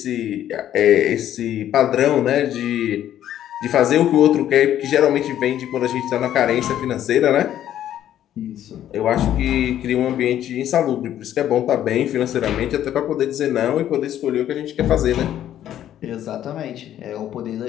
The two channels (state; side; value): quieter; right; 11.4 dB